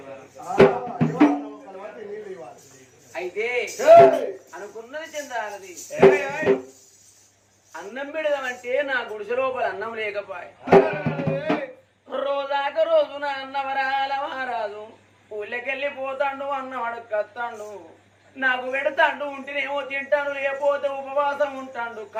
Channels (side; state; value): both; identical; correlation 1.00